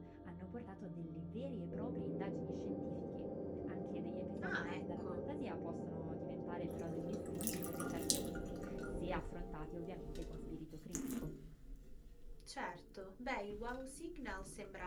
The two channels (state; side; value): identical; both; correlation 1.00